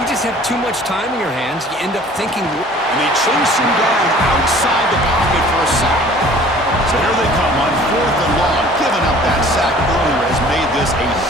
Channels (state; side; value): normal; both; correlation 0.50